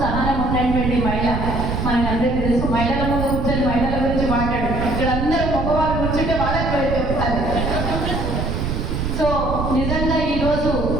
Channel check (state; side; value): noise; right; rumble, 2 dB below the sound